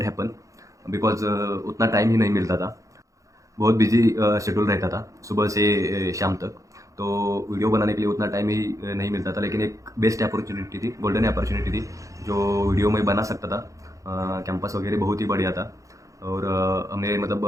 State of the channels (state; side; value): late; left; 0.16 ms